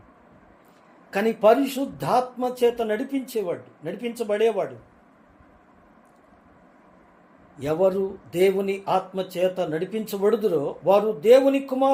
కానీ పరిశుద్ధాత్మ చేత నడిపించబడేవాడు ఎవరు దేవుని ఆత్మ చేత నడిపించబడుదురో వారు దేవుని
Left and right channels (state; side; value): identical; both; correlation 1.00